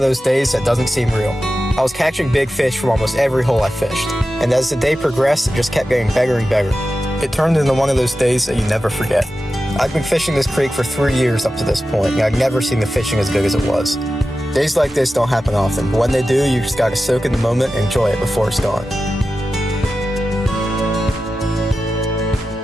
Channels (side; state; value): both; normal; correlation 0.93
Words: those days that doesn't seem real. I was catching big fish from almost every hole I fished, and as the day progressed, it just kept getting better and better. It turned into one of those days that you never forget. I've been fishing this creek for 3 years up to this point, and I've never seen the fishing as good as it was. Days like this don't happen often, but when they do, you just gotta soak in the moment and enjoy it before it's gone.